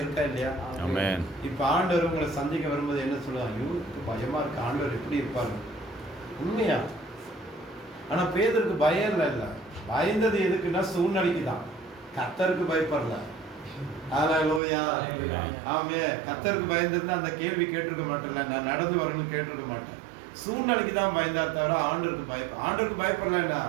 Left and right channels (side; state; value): left; drops out; at 14.6 s